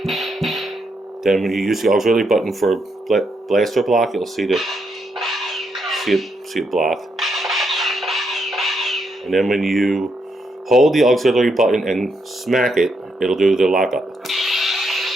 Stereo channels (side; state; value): both; normal; correlation 0.79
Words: Then when you use the auxiliary button for blaster block, you'll see it block. And then when you hold the auxiliary button and smack it, it'll do the lockup.